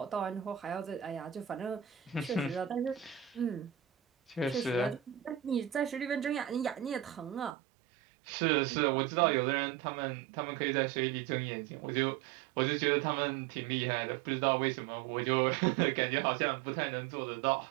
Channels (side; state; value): left; drops out; at 7.6 s